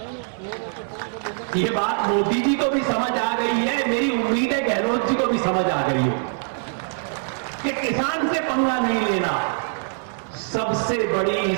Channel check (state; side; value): silent; left; 63 dB below the other